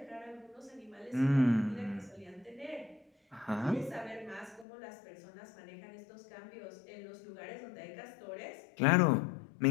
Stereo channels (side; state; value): right; drops out; at 4.7 s